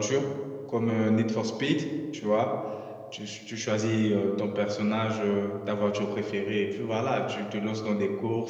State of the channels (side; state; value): both; identical; correlation 1.00